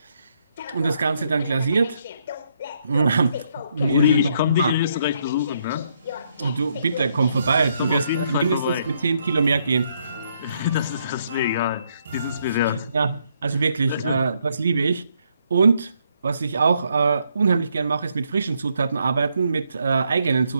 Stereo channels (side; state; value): both; inverted; correlation -0.74